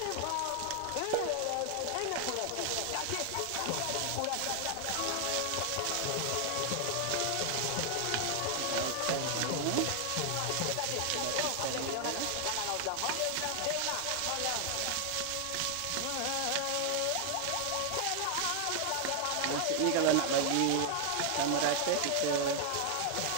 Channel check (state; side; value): different; both; correlation 0.00